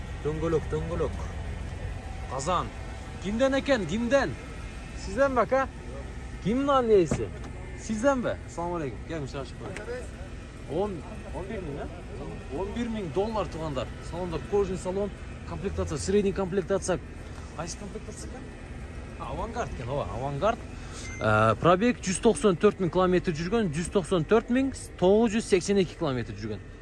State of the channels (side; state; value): both; identical; correlation 1.00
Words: Döngölök. Kazan. Kimden eken? Kimden? Sizden bak ha? Kimin annesi? Sizden be. Assalamu alaikum. Gelmiş aşık var. 11 bin ha? 11 bin dolar tuğanlar. Salonda kojin salon. Komplektatsiya, sredний komplektatsiya. Qaysi komplektatsiya ekan? Avangard ekan, Avangard. Probeg 194 bin kilometr жүрген, 194 bin 982 kilometr жүрген.